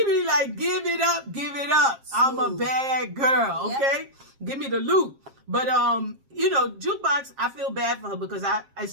be like, give it up. I'm a bad girl, okay? Give me the loot. But Jukebox, I feel bad for her because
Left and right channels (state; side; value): late; left; 7.5 ms